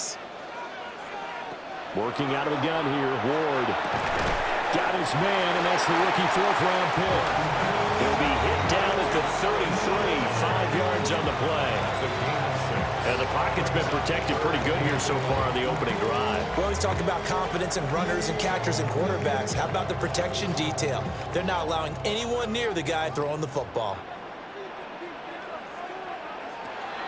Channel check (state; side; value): identical; both; correlation 1.00